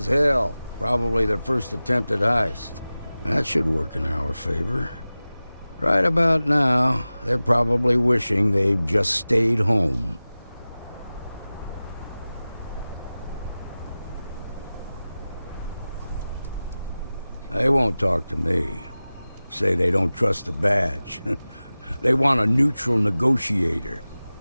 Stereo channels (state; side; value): inverted; both; correlation -0.97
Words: hell. Probably their first attempt at heist. That should work in our favor. Right about now, they're probably wishing they'd just stayed home. They won't talk to me. Say they don't trust the badge. They want a neutral negotiator.